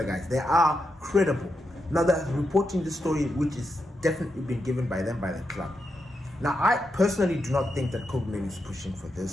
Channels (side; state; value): both; normal; correlation 0.85